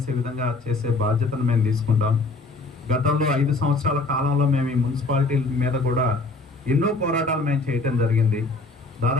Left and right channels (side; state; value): right; quieter; 3.4 dB